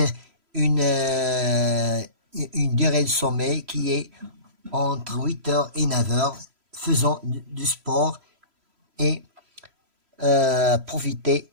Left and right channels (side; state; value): left; late; 3.0 ms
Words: une durée de sommeil qui est entre 8h et 9h, faisant du sport et profiter